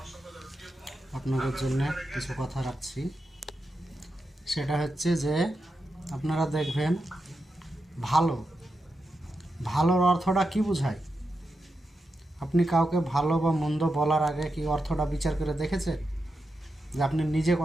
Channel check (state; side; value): normal; both; correlation 0.88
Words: আপনাদের জন্য কিছু কথা রাখছি। সেটা হচ্ছে যে আপনারা দেখবেন ভালোর অর্থটা কি বোঝায়। আপনি কাউকে ভালো বা মন্দ বলার আগে কি অর্থটা বিচার করে দেখেছেন যে আপনি নিজে